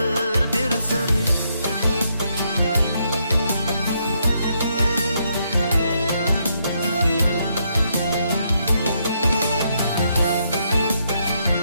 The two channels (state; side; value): inverted; both; correlation -0.76